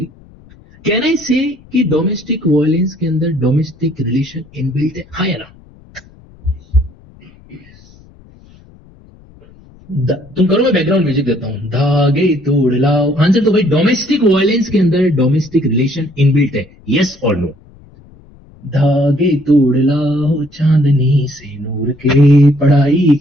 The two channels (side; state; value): left; noise; rumble, 25 dB below the sound